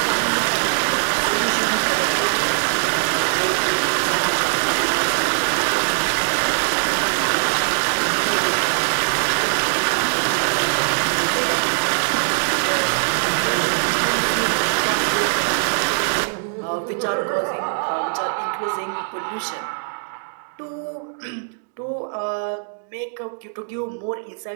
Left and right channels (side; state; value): left; silent; digital silence